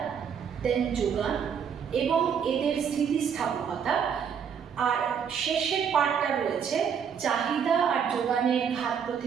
দেন যোগান এবং এদের স্থিতিস্থাপকতা, আর শেষের পার্টটা রয়েছে চাহিদা আর যোগানের ঘাত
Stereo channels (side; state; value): left; quieter; 7.3 dB